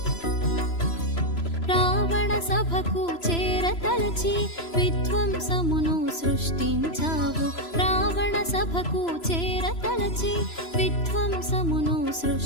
రావణ సభకు చేరతలచి విధ్వంసమును సృష్టించావు రావణ సభకు చేరతలచి విధ్వంసమును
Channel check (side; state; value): right; late; 3.0 ms